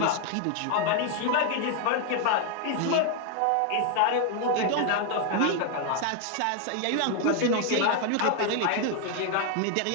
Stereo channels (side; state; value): both; different; correlation 0.01